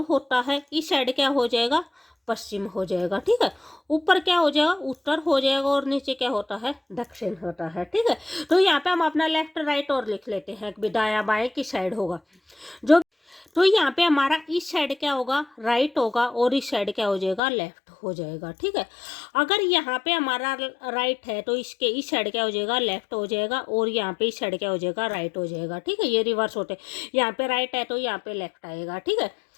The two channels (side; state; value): right; drops out; at 17.4 s